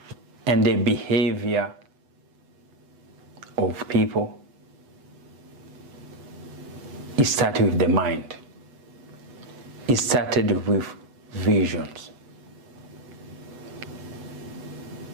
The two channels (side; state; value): left; late; 8.1 ms